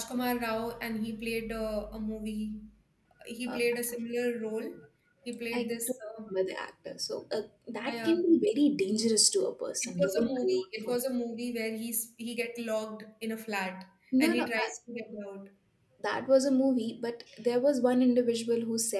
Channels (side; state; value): both; identical; correlation 1.00